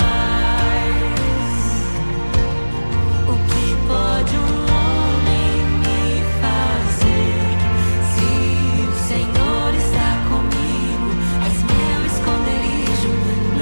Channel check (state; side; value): inverted; both; correlation -1.00